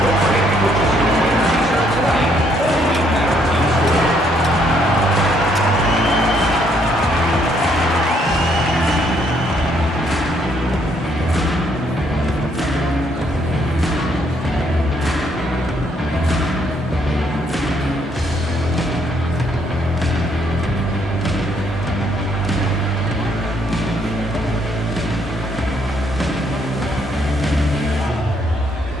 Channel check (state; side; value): normal; both; correlation 0.70